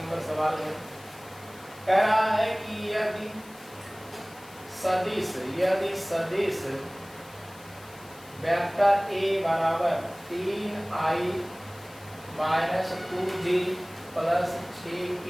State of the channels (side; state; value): left; noise; hiss, 22 dB below the sound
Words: सवाल है। कह रहा है कि यदि सदिश वेक्टर a बराबर 3i minus 2j plus 6k,